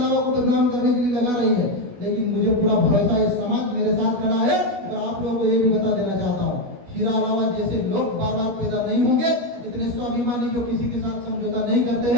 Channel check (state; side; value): late; left; 16 ms